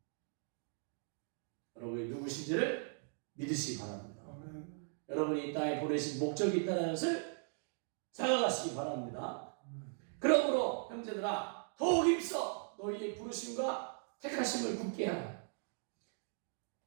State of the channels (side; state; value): left; silent; 52 dB below the other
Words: 여러분이 누구신지를 믿으시기 바랍니다. 여러분이 이 땅에 보내신 목적이 있다는 것을 생각하시기 바랍니다. 그러므로 형제들아 더욱 힘써 너희의 부르심과 택하심을 굳게 하라.